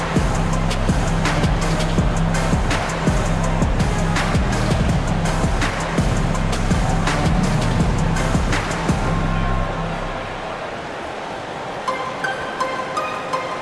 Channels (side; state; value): both; identical; correlation 1.00